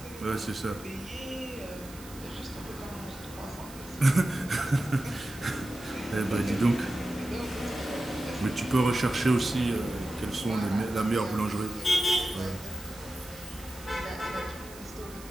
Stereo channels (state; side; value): noise; right; hiss, 18 dB below the sound